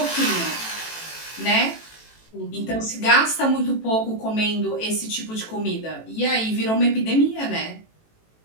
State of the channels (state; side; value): late; right; 18 ms